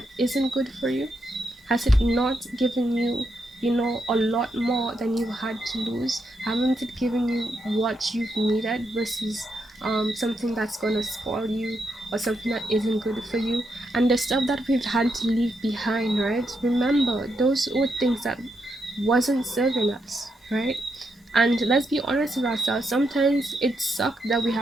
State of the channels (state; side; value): normal; both; correlation 0.81